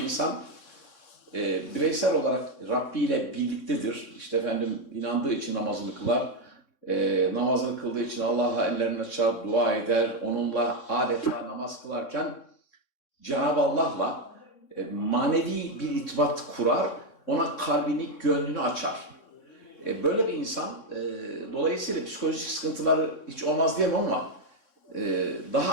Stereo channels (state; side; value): late; right; 3.6 ms